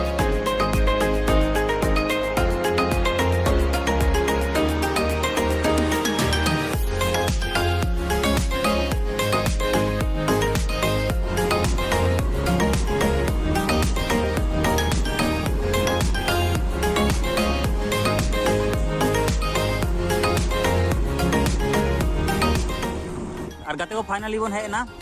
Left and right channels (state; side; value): identical; both; correlation 1.00